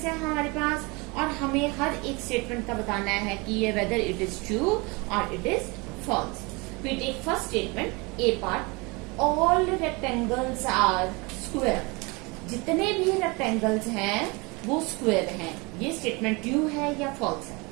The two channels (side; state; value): left; quieter; 27.2 dB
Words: है हमारे पास और हमें हर एक statement का बताना है कि ये वेदर इट इज ट्रू और it is false. We take first statement A part. All rectangles are square. जितने भी रेक्टेंगल्स हैं वो स्क्वायर हैं. ये स्टेटमेंट ट्रू है या फॉल्स है?